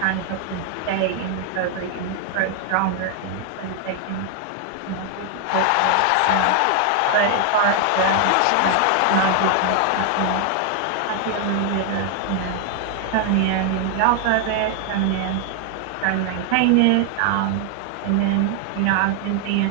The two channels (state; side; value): different; both; correlation 0.00